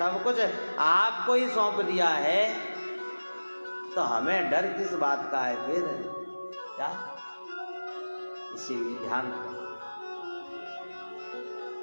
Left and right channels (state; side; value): inverted; both; correlation -1.00